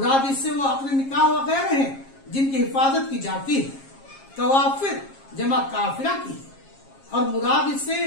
اس سے وہ عقد نکاح وغیرہ ہیں جن کی حفاظت کی جاتی ہے۔ قوافر جمع کافرہ کی اور مراد اس سے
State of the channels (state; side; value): late; right; 7.4 ms